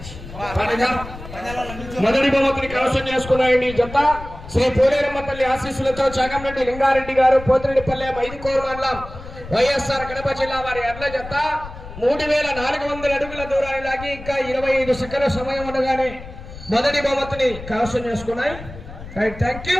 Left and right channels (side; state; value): left; noise; rumble, 13 dB below the sound